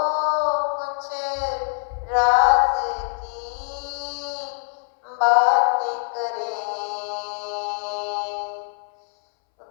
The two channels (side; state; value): right; silent; 63 dB below the other